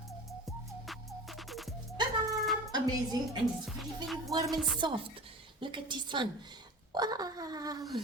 Ta-da! Amazing, and it's very, very warm and soft. Look at this one. Wow.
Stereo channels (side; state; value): both; normal; correlation 0.35